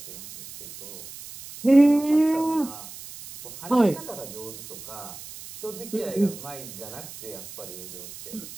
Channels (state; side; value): noise; right; hiss, 14 dB below the sound